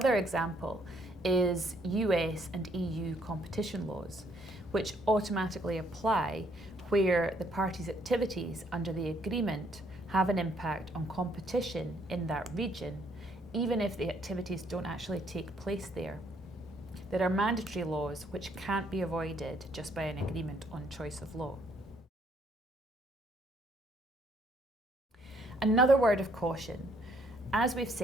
example is US and EU competition laws, which automatically apply where the parties' activities under the agreement have an impact on competition in that region, even if the activities don't actually take place there. There are mandatory laws which can't be avoided just by an agreement on choice of law. Another word of caution. As we've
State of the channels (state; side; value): normal; both; correlation 0.67